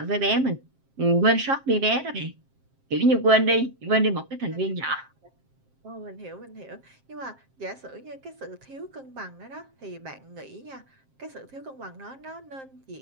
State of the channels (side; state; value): left; late; 7.5 ms